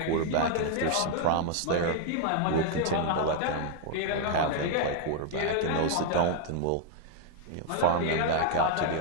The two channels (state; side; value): different; both; correlation 0.00